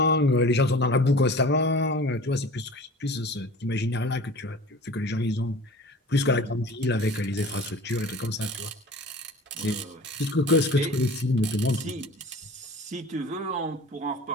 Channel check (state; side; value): normal; both; correlation 0.41